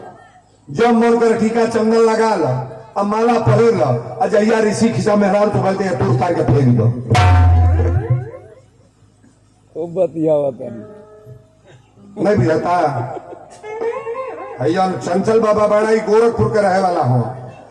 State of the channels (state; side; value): identical; both; correlation 1.00